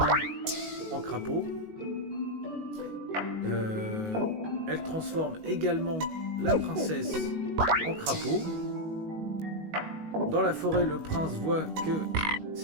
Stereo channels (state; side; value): late; left; 19 ms